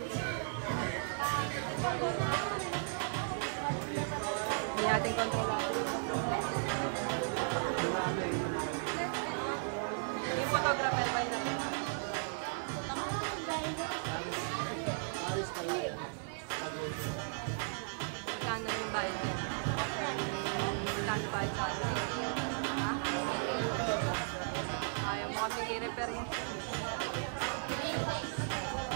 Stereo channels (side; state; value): left; silent; digital silence